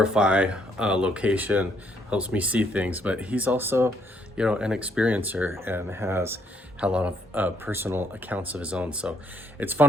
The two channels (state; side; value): normal; both; correlation 0.70